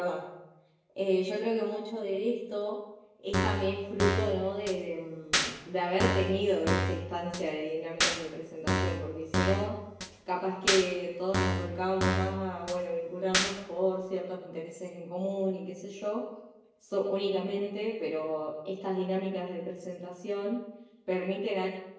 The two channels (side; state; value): both; identical; correlation 1.00